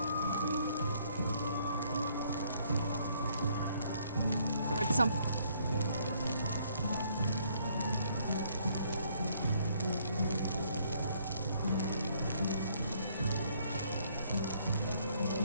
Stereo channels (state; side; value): inverted; both; correlation -0.67